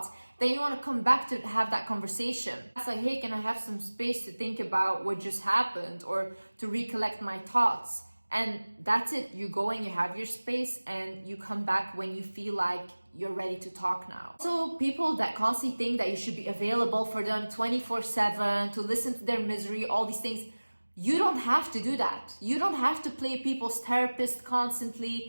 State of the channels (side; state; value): both; inverted; correlation -1.00